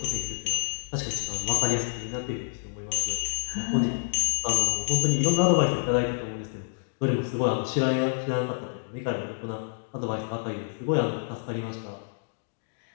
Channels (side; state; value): right; silent; digital silence